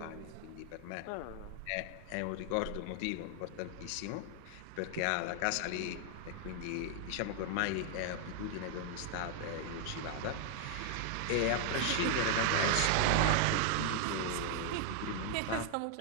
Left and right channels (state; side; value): different; both; correlation 0.00